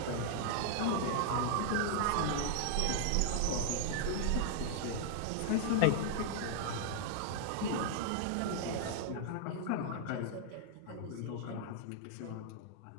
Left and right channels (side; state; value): both; different; correlation -0.01